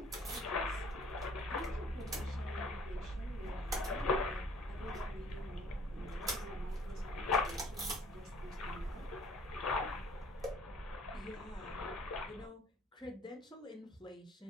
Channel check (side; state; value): both; normal; correlation 0.56